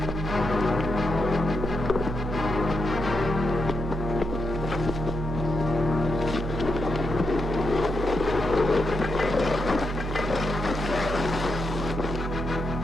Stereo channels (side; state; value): both; normal; correlation 0.83